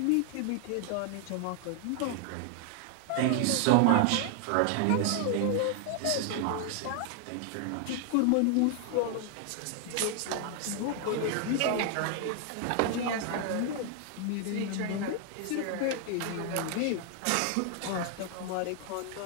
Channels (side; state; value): both; different; correlation 0.00